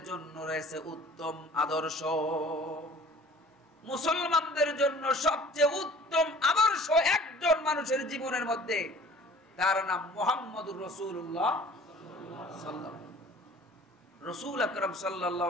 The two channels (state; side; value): normal; both; correlation 0.49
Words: জন্য রয়েছে উত্তম আদর্শ। মুসলমানদের জন্য সবচেয়ে উত্তম আদর্শ একজন মানুষের জীবনের মধ্যে, তার নাম মুহাম্মদুর রাসূলুল্লাহ সাল্লাল্লাহু আলাইহি ওয়াসাল্লাম। রাসূল আকরাম